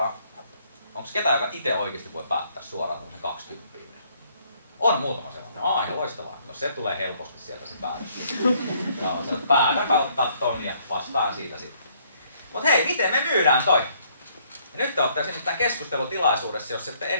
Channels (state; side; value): inverted; both; correlation -0.66